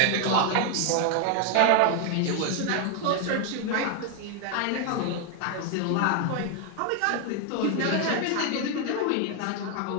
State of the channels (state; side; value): different; both; correlation 0.01